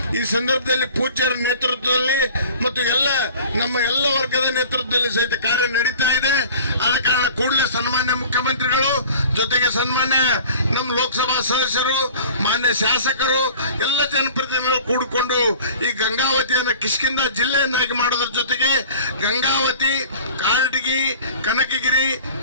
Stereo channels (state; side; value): inverted; both; correlation -0.44